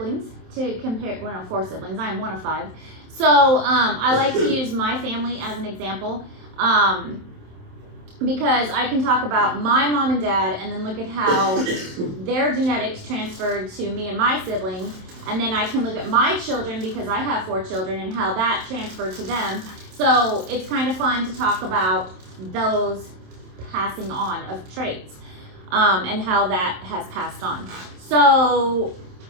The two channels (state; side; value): late; left; 27 ms